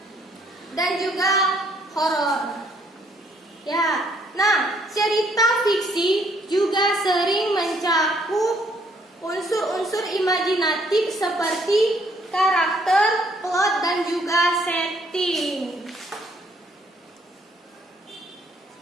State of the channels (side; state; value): both; normal; correlation 0.67